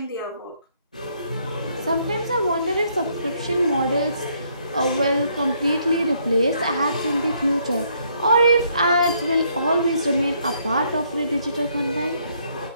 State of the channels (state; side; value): inverted; both; correlation -0.70